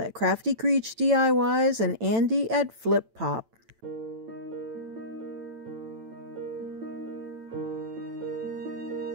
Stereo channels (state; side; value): late; left; 9.0 ms